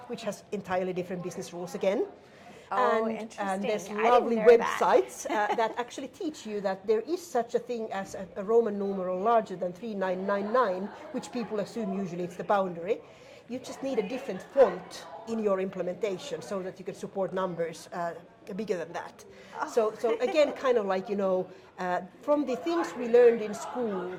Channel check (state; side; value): identical; both; correlation 1.00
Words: which has entirely different business rules again. And there's lovely websites that actually teach you that there is such a thing as a Roman numeral larger than 3999, which people assume usually it's the boundary. You just need a different font in your implementation so that you can support numbers bigger than that. So again, kind of like, from the things we learned in school,